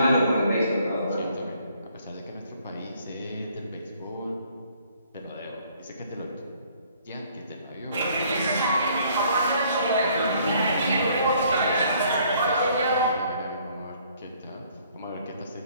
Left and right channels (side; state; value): both; inverted; correlation -0.62